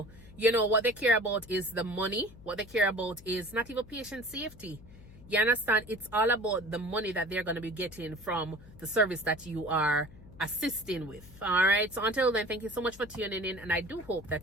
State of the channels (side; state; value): left; noise; hum, 20 dB below the sound